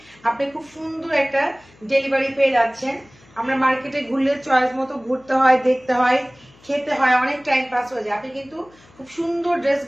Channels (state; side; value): noise; left; hum, 28 dB below the sound